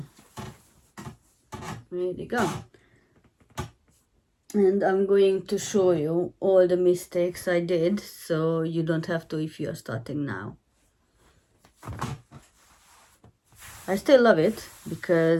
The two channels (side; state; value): both; identical; correlation 1.00